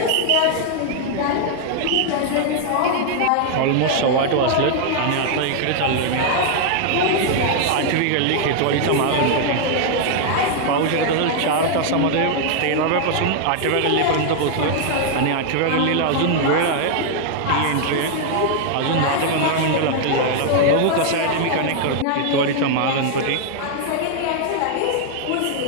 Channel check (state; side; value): different; both; correlation 0.00